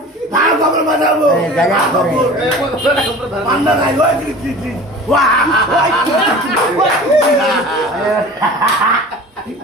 মা কবুতর বাজাবো গাজা করে পান্না গাই ওই টি ওয়া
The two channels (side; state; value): both; normal; correlation 0.39